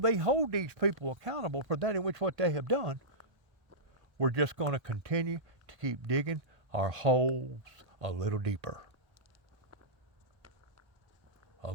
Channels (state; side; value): late; left; 1.8 ms